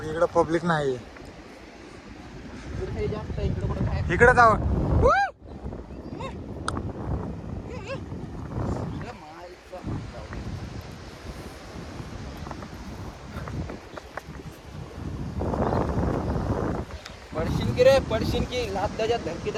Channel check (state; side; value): identical; both; correlation 1.00